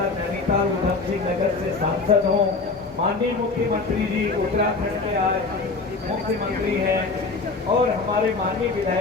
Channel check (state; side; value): quieter; right; 4.0 dB